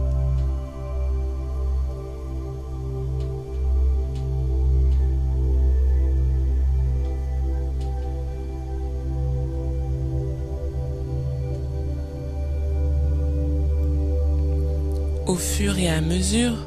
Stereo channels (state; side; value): identical; both; correlation 1.00